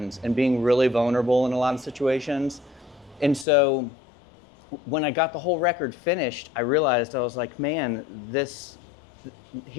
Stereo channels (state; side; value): drops out; right; at 3.5 s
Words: and being really vulnerable in a lot of situations. And so when I got the whole record finished, I realized I was like, man, this